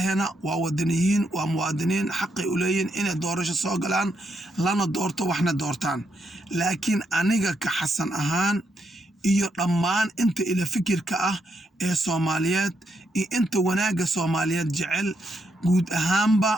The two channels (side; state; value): both; normal; correlation 0.79